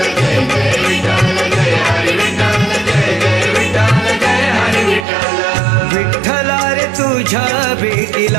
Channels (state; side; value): drops out; left; at 5.1 s